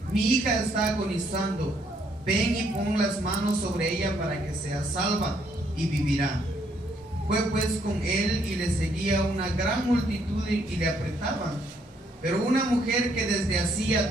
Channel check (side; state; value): both; normal; correlation 0.70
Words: mi hija está agonizando, ven y pon las manos sobre ella para que sea salva y vivirá. Fue pues con él, y le seguía una gran multitud y le apretaban. Pero una mujer que desde hacía